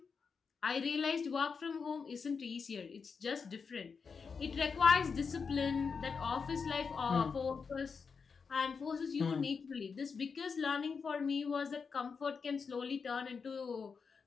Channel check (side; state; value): right; quieter; 5.5 dB